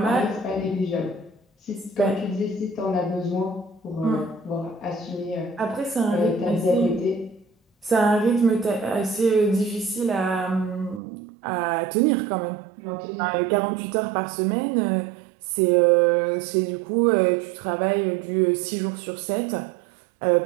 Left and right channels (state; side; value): drops out; left; at 11.0 s